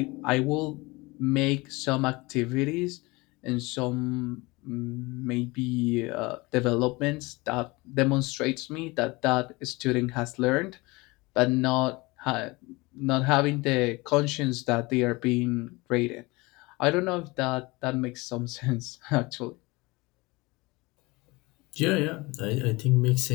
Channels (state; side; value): quieter; right; 23.6 dB